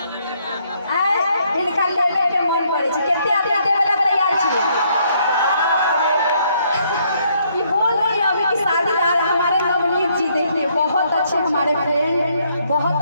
इनका लेवे के मन करे छै केते आदमी देवे ला तैयार छियै कि बोल रही है अभी की शादीदार हमारे नवनीत जी देखिए बहुत अच्छे हमारे फ्रेंड बहुत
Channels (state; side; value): inverted; both; correlation -0.70